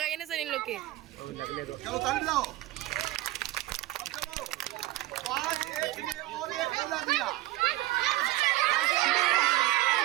ना सर इन लोग के। लगने दो। चलो ताली बजाओ। अब चलो 5 एक के लिए और एक मिला दिया।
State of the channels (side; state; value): left; quieter; 17.4 dB